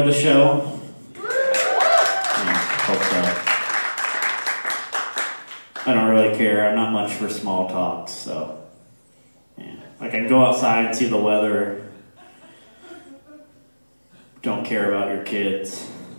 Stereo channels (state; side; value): inverted; both; correlation -1.00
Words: the show. Yeah, hope so. I don't really care. I'm not much for small talks, so. Yeah. I can go outside and see the weather. Don't care about your kids.